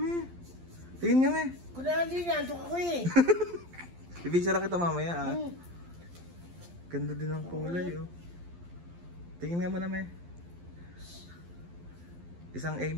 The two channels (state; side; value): late; left; 12 ms